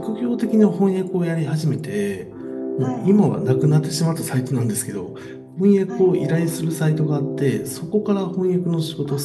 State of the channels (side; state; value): both; identical; correlation 1.00